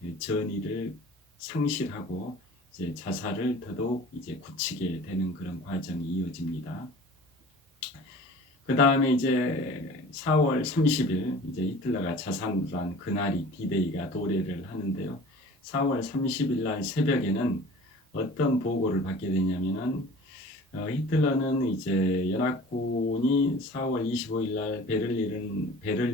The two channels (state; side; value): normal; both; correlation 0.43